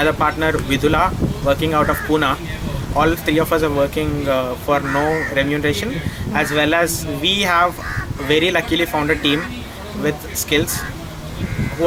partner Vidula working out of Pune, all three of us are working for no remuneration, as well as we have very luckily found a team with skills who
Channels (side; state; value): both; identical; correlation 1.00